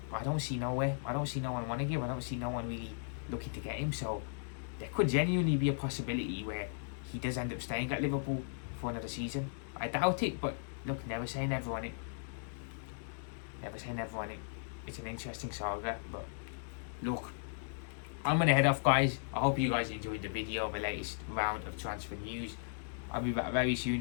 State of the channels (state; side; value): silent; right; digital silence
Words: I don't see nowhere. I don't see no one wanting him. I don't see no one really looking to get him. So there could genuinely be a possibility where he does end up staying at Liverpool for another season. I doubt it, but look, never say never on it. Never say never on it. It's an interesting saga, but look, I'm going to head off, guys. I hope you guys enjoyed the video of the latest round of transfer news. I'll be back very